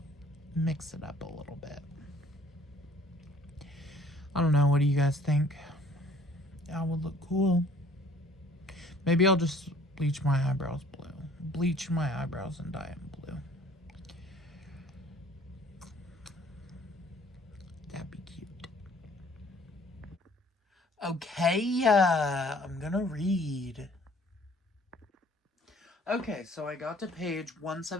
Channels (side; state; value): both; normal; correlation 0.55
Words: mix it up a little bit. I don't know. What do you guys think? That would look cool. Maybe I'll just bleach my eyebrows blue. Bleach my eyebrows and dye them blue. That'd be cute. Okay, I'm gonna read. Okay, so I got to page